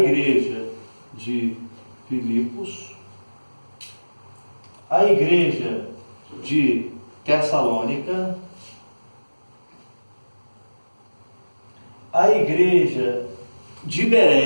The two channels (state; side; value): inverted; both; correlation -1.00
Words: de Filipos, a igreja de Tessalônica, a igreja de